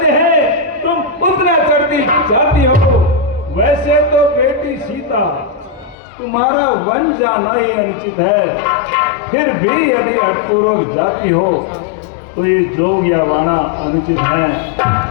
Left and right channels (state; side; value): drops out; right; at 6.0 s